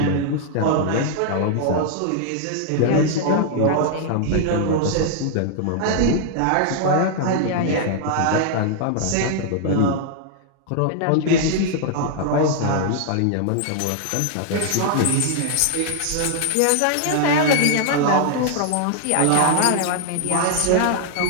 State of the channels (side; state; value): both; different; correlation -0.01